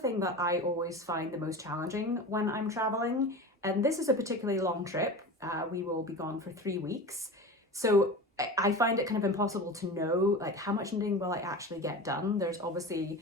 that I always find the most challenging when I'm traveling. And this is a particularly long trip. We will be gone for 3 weeks. So I find it kind of impossible to know like how much knitting will I actually get done. There's obviously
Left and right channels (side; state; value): both; normal; correlation 0.30